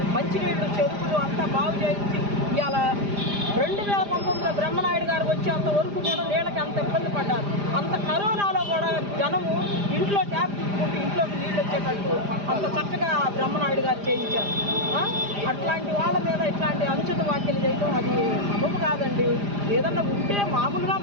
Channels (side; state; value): left; late; 4.9 ms